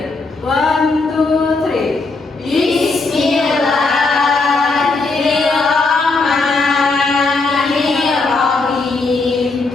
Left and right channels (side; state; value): right; quieter; 3.7 dB